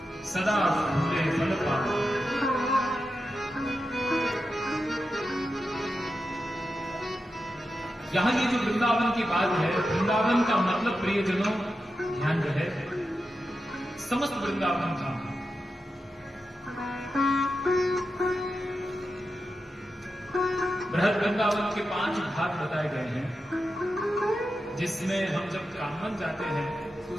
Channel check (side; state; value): both; normal; correlation 0.89